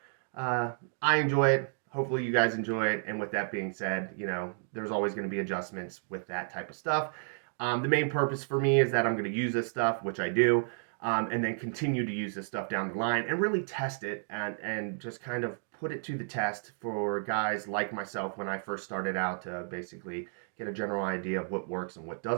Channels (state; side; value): silent; left; digital silence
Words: I enjoy it. Hopefully you guys enjoy it. And with that being said, you know, there's always going to be adjustments with that type of stuff. The main purpose for me is that I'm going to use this stuff, which I do, and then continue to use this stuff down the line and really test it and just kind of put it to the test for guys like myself when I first started out, to basically get a general idea of what works and what